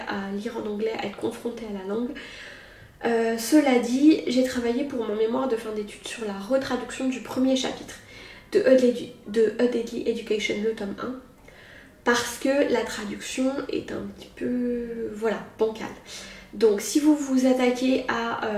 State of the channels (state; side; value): identical; both; correlation 1.00